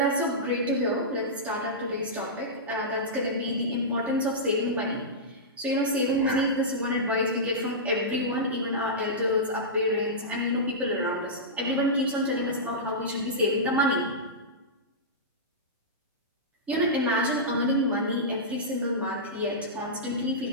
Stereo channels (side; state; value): both; normal; correlation -0.14